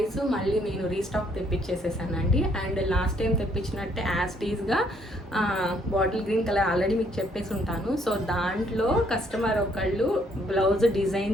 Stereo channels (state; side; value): normal; both; correlation 0.68